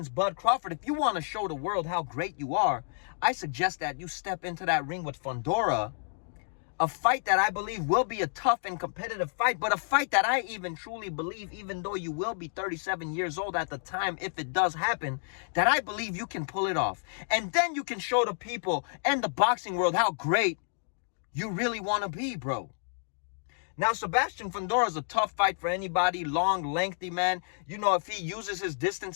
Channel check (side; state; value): right; silent; digital silence